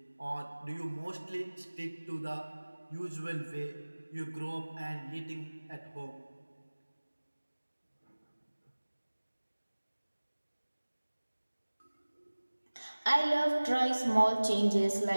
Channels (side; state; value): both; inverted; correlation -1.00